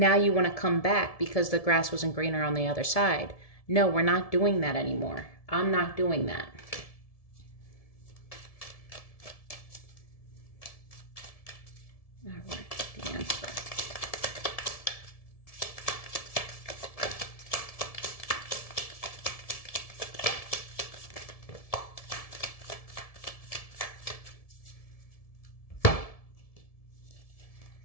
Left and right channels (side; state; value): right; late; 1.7 ms